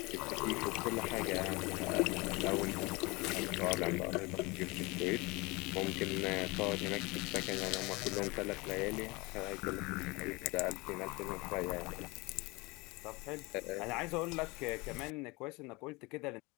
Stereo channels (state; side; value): quieter; right; 25.0 dB